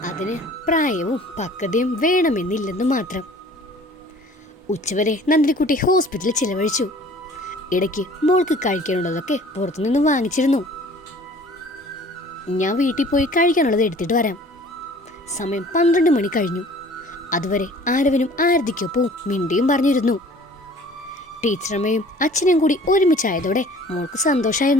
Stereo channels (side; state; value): both; normal; correlation 0.50